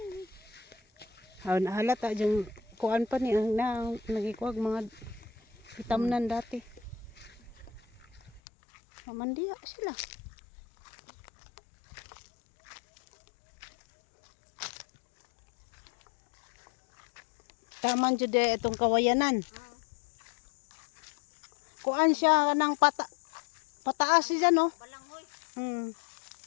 Halata yung kuan pa ni ang nagikuag mga itamnan dati. Mandiya sila. Taman jud itong kawayanan. Kuan siya ng pataas siya no. Balanghoy.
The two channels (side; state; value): right; drops out; at 8.4 s